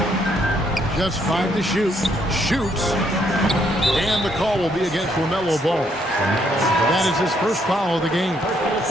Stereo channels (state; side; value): normal; both; correlation 0.72